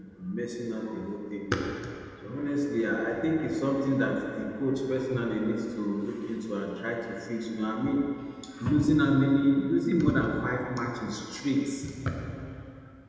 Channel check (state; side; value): identical; both; correlation 1.00